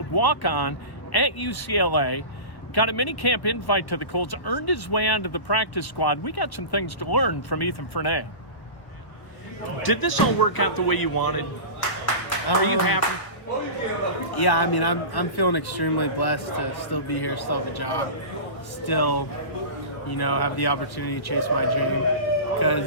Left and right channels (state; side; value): late; right; 1.1 ms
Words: walk-on at UCLA, got a minicamp invite to the Colts, earned his way onto the practice squad. We got some things to learn from Ethan Fernea. Did this all work out the way you wanted? Are you happy? Yeah, I mean, I'm feeling extremely blessed to still be here, still have a job, still, have the opportunity to chase my dream.